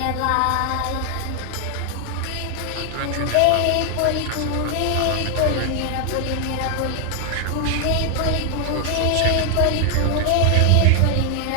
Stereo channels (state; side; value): different; both; correlation 0.00